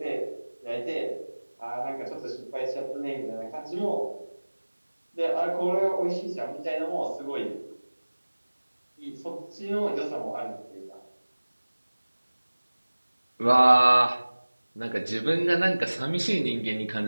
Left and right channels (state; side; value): inverted; both; correlation -1.00